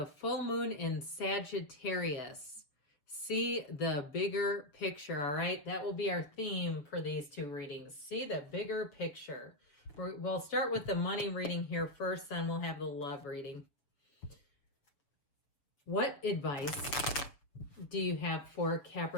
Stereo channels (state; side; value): late; right; 7.0 ms